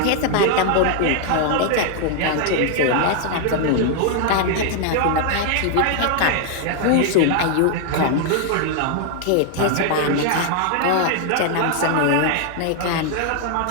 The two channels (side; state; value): both; different; correlation 0.00